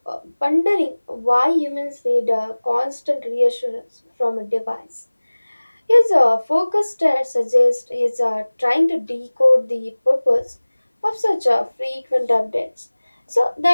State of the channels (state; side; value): inverted; both; correlation -1.00